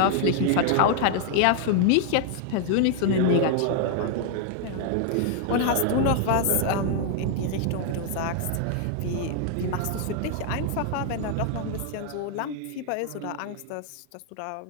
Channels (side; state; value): both; different; correlation 0.00